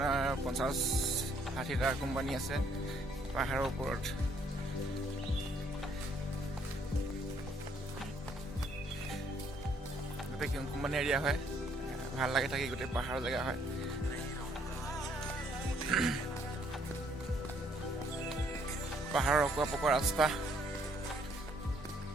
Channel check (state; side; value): normal; both; correlation 0.66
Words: 50-60টা কোম্পানী আছে পাহাৰৰ ওপৰত। গোটেই কোম্পানী এৰিয়া হয়, ভাল লাগে থাকি, গোটেই পাহাৰৰ জেগা হয়। পাহাৰৰ অকোৱা পকোৱা ৰাস্তা,